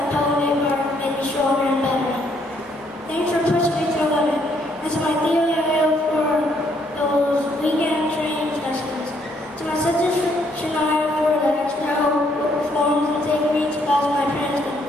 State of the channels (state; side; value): normal; both; correlation 0.70